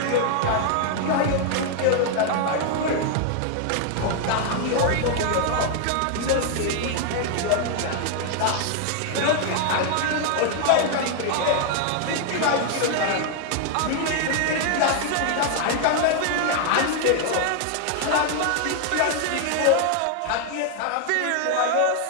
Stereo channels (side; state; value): both; different; correlation 0.00